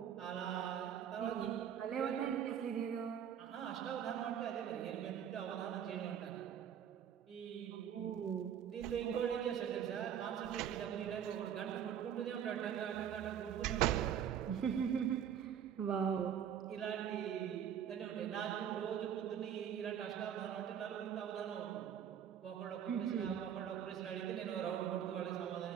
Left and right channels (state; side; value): quieter; left; 9.0 dB